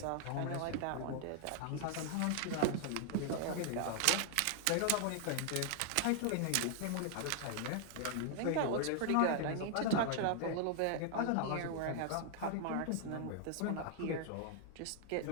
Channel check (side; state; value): both; different; correlation 0.00